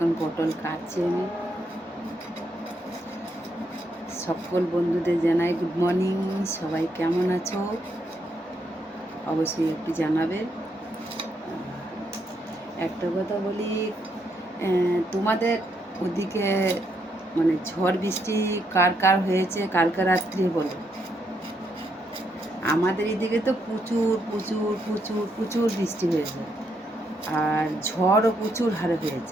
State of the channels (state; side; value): normal; both; correlation 0.77